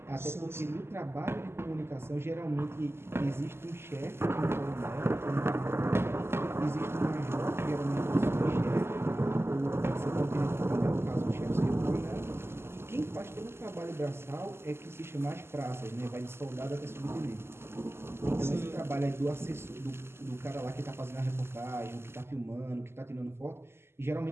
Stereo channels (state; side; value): late; left; 0.12 ms